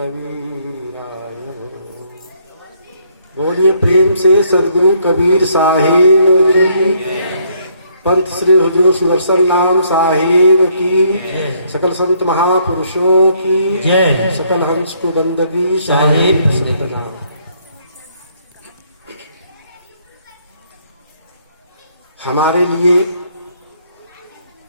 बोलिए प्रेम से सदगुरु कबीर साहिब की, पंत श्री हुजूर सुदर्शन नाम साहिब की, सकल संत महापुरुषों की, सकल हंस को बंदगी साहिब सतनाम। हमारे लिए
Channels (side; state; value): both; inverted; correlation -0.68